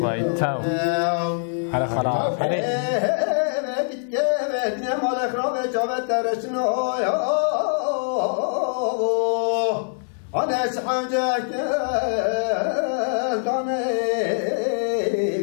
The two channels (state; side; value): silent; right; digital silence